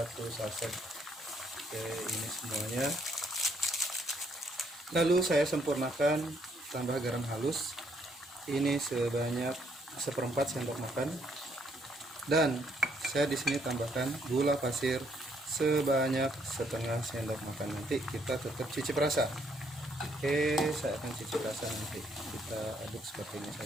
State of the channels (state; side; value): normal; both; correlation 0.70